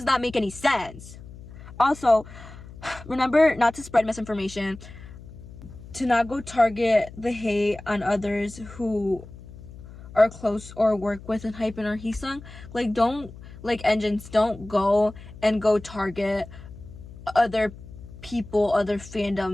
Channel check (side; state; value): left; noise; hum, 16 dB below the sound